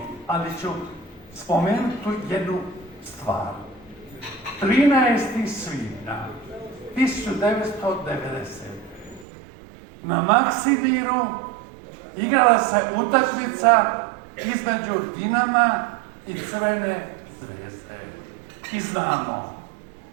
ali ću spomenuti jednu stvar. 13. svibnja 1990. na Maksimiru igrala se utakmica između Dinama i Crvene zvezde. I znamo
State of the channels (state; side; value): drops out; left; at 9.2 s